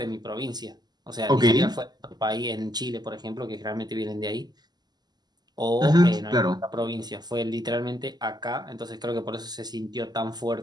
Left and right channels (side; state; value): left; late; 0.20 ms